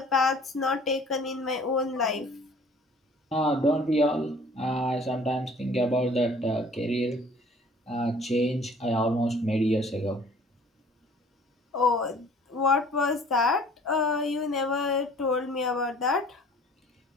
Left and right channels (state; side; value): normal; both; correlation 0.52